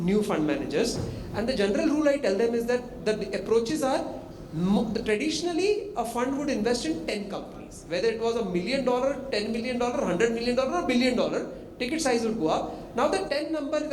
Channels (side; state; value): both; identical; correlation 1.00